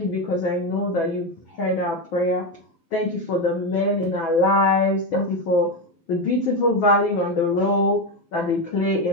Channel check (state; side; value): normal; both; correlation 0.12